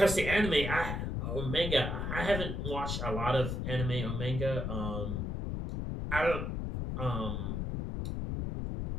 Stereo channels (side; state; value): left; noise; rumble, 2 dB below the sound